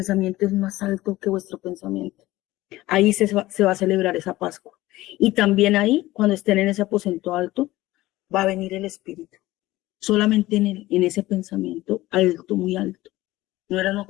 es más alto que vuestro pensamiento. Ahí se va a celebrar esa Pascua. Y también ahí, cuando estén en ese aposento alto, va a venir el Espíritu. Solamente en ese pensamiento alto, muy alto. No era una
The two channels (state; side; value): quieter; right; 17.5 dB